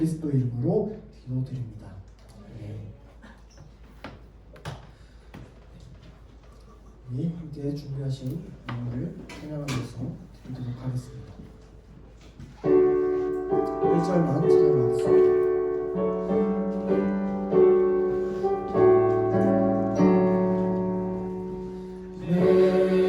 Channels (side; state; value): both; identical; correlation 1.00